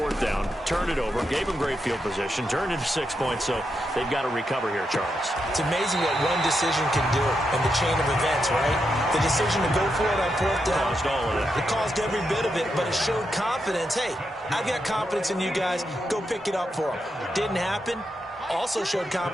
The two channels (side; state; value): both; normal; correlation 0.84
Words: down, turned it over, gave them great field position, turned into 6 points, so they've got to recover here, Charles. It's amazing what one decision can do in the chain of events, right? The decision to go for it on 4th down. Caused all of it. It caused every bit of it, but it showed confidence. Hey, I've got confidence in you guys. Go pick it up for them. Didn't happen. Also showed